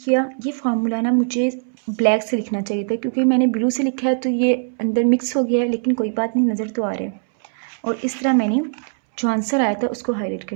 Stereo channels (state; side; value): silent; left; 65 dB below the other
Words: किया। ये फार्मूला ना मुझे ब्लैक से लिखना चाहिए था क्योंकि मैंने ब्लू से लिखा है तो ये अंदर मिक्स हो गया है, लेकिन कोई बात नहीं, नज़र तो आ रहा है। और इस तरह मैंने जो आंसर आया था उसको हाईलाइट